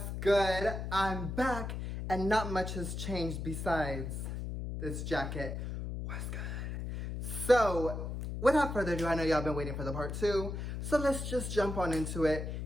good? I'm back, and not much has changed besides this jacket. What's good? So, without further ado, I know y'all been waiting for the part two, so let's just jump on into it.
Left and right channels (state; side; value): noise; left; hum, 5 dB below the sound